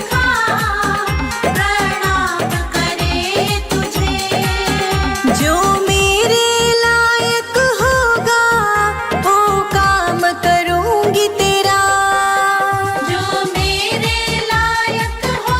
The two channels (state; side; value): identical; both; correlation 1.00